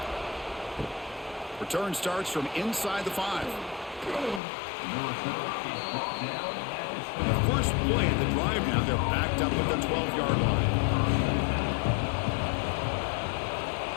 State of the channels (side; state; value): right; drops out; at 4.4 s